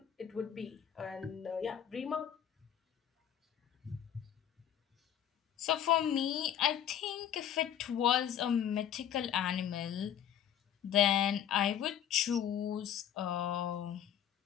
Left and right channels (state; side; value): quieter; right; 10.0 dB